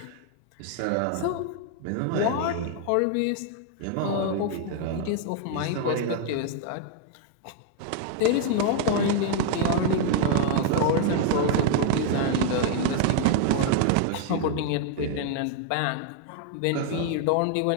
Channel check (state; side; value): different; both; correlation 0.00